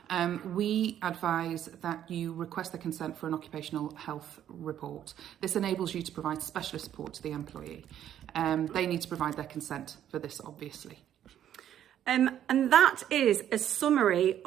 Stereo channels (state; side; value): quieter; left; 10.7 dB